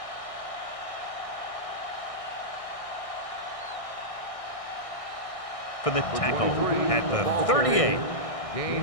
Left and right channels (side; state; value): right; late; 1.6 ms